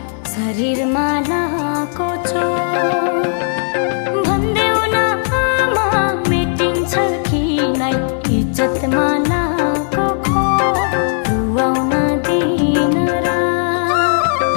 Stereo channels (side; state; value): right; silent; 57 dB below the other